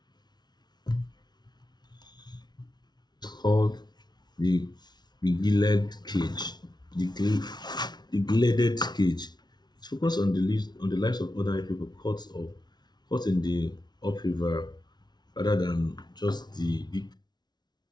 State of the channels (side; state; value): right; late; 0.20 ms